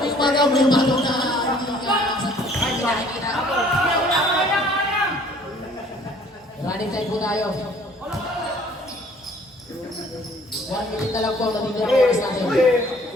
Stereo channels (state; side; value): normal; both; correlation 0.56